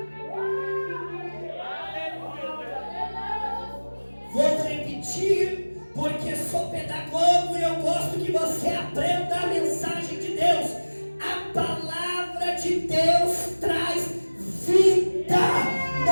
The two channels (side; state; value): both; inverted; correlation -1.00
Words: Vou repetir, porque sou pedagogo e eu gosto que você aprenda a mensagem de Deus. A palavra de Deus traz vida.